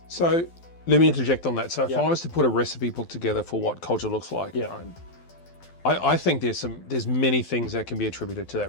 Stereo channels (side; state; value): right; late; 12 ms